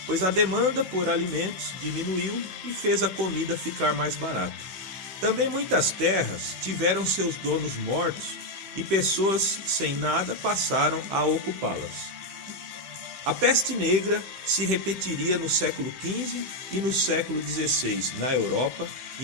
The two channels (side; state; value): left; late; 15 ms